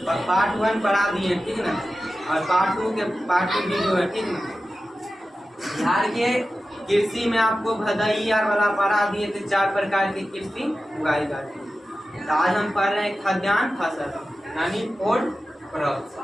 पार्ट 1 पढ़ा दिए, ठीक ना, और पार्ट 2 वीडियो है, ठीक ना। बिहार के कृषि में आपको भदई वाला पढ़ा दिए थे, 4 प्रकार की कृषि उगाई जाती है। तो आज हम पढ़ रहे हैं खाद्यान्न फसल, यानी फूड क्रॉप्स,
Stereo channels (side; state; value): both; normal; correlation 0.94